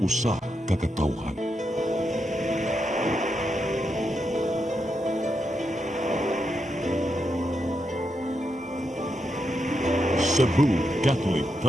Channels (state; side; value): normal; both; correlation 0.84